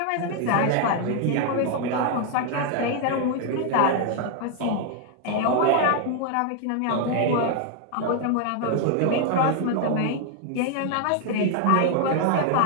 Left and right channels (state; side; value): different; both; correlation 0.00